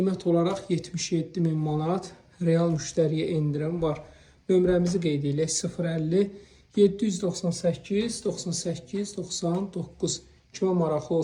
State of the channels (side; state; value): both; identical; correlation 1.00